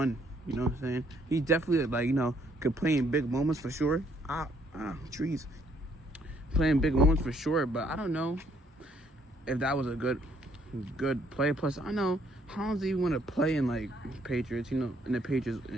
You know what I'm saying? He definitely, like, you know, could play in big moments for sure. Trees. Playing big moments for sure, but I don't know if that was a good play. Plus, I know Hollins even want to play in like Patriots, you know, in the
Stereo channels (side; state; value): both; normal; correlation 0.68